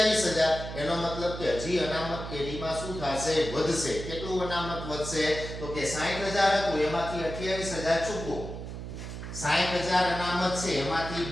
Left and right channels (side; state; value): right; noise; hum, 8 dB below the sound